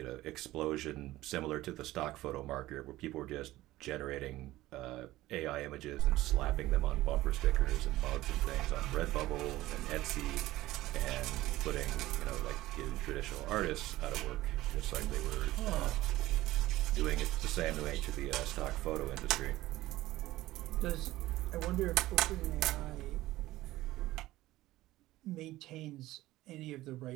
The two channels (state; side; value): quieter; left; 16.7 dB